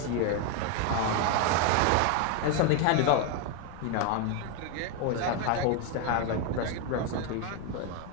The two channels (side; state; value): both; different; correlation 0.01